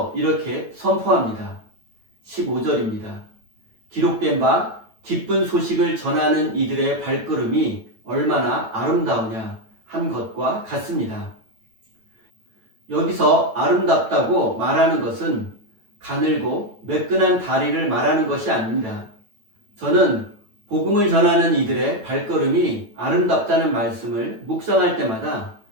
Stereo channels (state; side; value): late; left; 9.0 ms